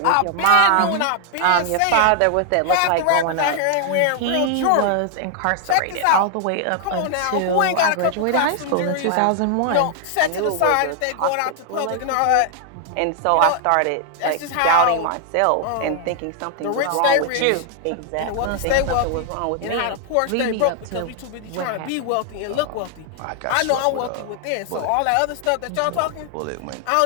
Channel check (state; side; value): different; both; correlation 0.00